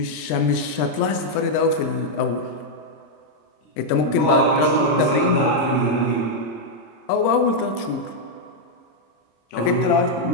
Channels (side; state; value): right; late; 26 ms